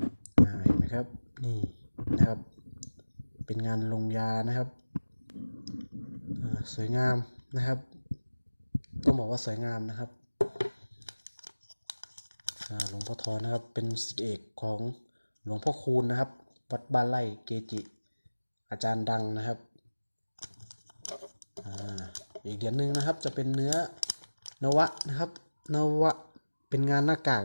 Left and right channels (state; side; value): inverted; both; correlation -1.00